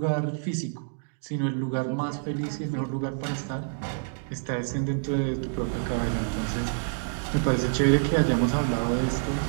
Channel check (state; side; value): silent; left; digital silence